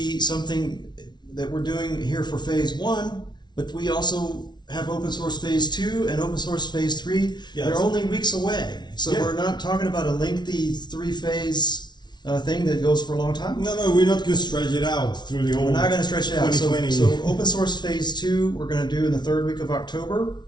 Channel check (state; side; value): late; right; 0.20 ms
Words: something that we're doing here for phase 1, but we also have open source phase 2 and open source phase 3. Yes. They're only weeks away. So we're not talking about a lengthy 3-phase thing that goes for a long time. No, we're not going to stretch it out through the whole. We're not going to stretch it out. So open source phase 2 we're going to do in the 3rd week of October.